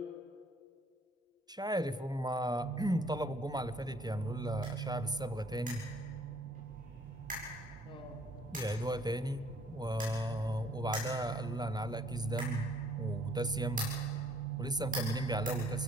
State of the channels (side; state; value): both; normal; correlation 0.61